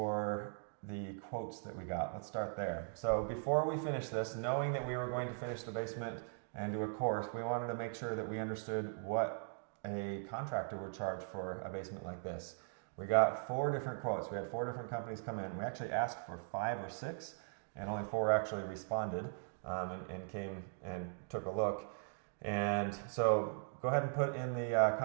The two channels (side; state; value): left; silent; digital silence